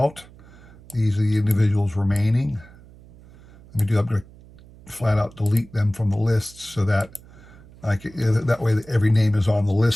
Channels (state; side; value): noise; right; hum, 22 dB below the sound